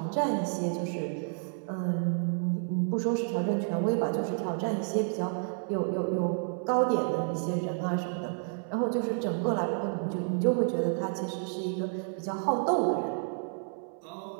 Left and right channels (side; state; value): left; silent; 58 dB below the other